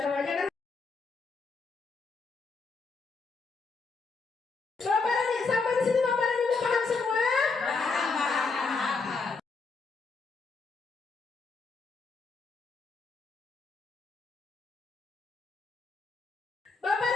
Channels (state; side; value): quieter; right; 4.4 dB